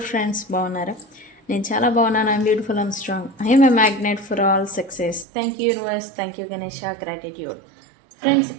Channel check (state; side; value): drops out; left; at 5.2 s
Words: ఫ్రెండ్స్? బాగున్నారా? నేను చాలా బాగున్నాను. I'm beautiful, I'm strong, I'm a magnet for all success. Thank you universe, thank you Ganesha, gratitude. Friends